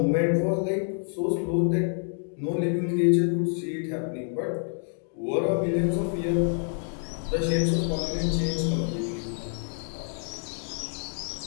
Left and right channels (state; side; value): silent; right; 60 dB below the other